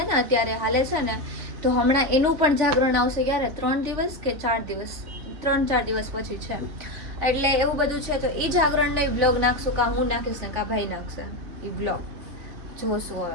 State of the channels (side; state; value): left; late; 3.5 ms